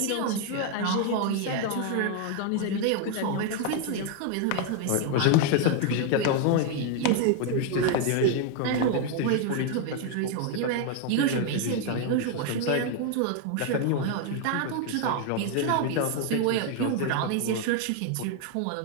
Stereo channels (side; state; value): both; different; correlation 0.01